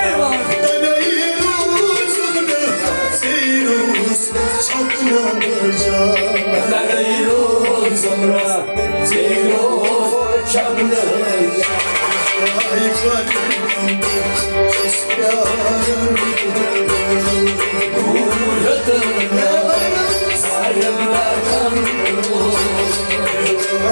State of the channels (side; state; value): both; inverted; correlation -1.00